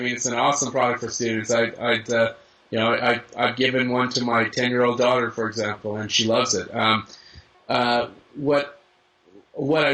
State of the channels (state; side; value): identical; both; correlation 1.00